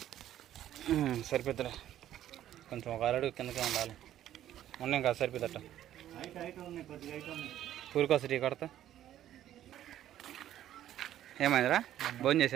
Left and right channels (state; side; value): quieter; left; 12.1 dB